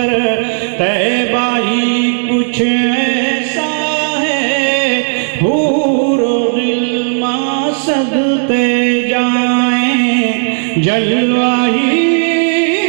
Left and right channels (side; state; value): left; silent; digital silence